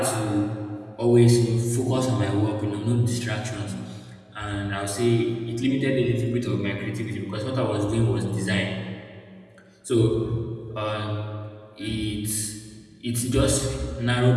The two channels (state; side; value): identical; both; correlation 1.00